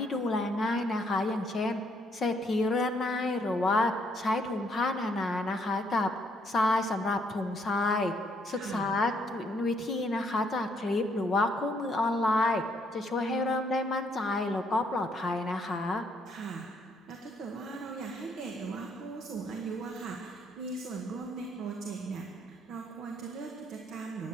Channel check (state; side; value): normal; both; correlation 0.70